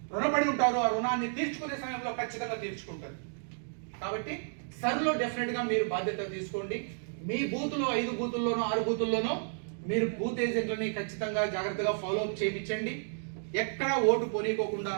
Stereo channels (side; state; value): left; silent; digital silence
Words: రుణపడి ఉంటారు. ఆ రుణాన్ని తీర్చుకునే సమయంలో ఖచ్చితంగా తీర్చుకుంటారు. కాబట్టి సర్లో డెఫినెట్ గా మీరు బాధ్యత తీసుకోండి. మీ బూతులో 5 బూతుల్లోనో 6 బూతుల్లోనో మీరు బూత్ ఏజెంట్లని ఖచ్చితంగా జాగ్రత్తగా ఫాలో అప్ చేయించండి. ఎక్కడా ఓటు పోనీకోకుండా